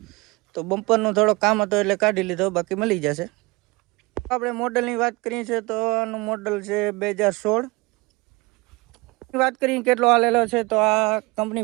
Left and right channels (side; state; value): left; quieter; 24.8 dB